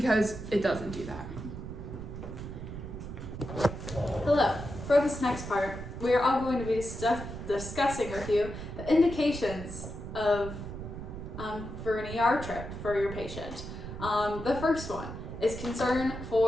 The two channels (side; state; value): right; noise; rumble, 9 dB below the sound